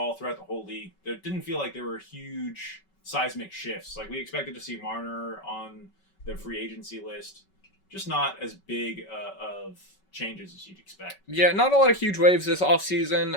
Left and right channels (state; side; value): late; right; 5.3 ms